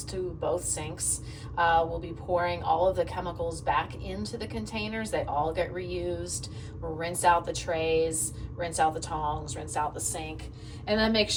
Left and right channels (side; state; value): both; identical; correlation 1.00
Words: to both sinks. We'll be pouring all of the chemicals back into the containers. They all get reused. We'll rinse out the trays, rinse out the tongs, rinse out the sink, and then make